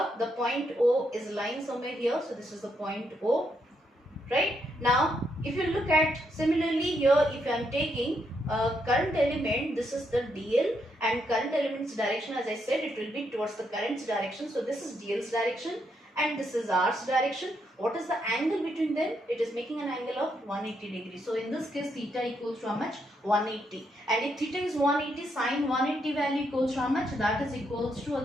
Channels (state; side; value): normal; both; correlation 0.78